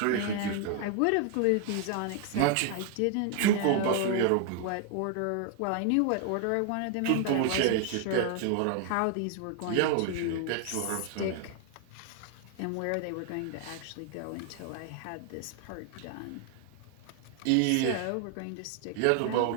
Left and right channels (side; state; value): both; different; correlation 0.00